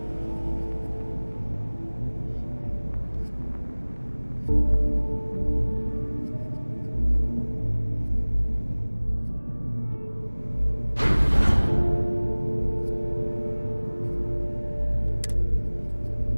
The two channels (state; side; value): inverted; both; correlation -1.00